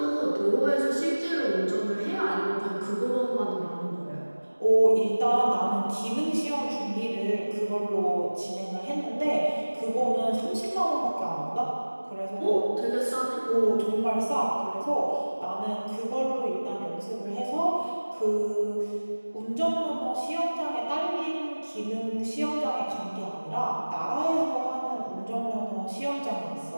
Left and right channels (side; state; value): both; inverted; correlation -1.00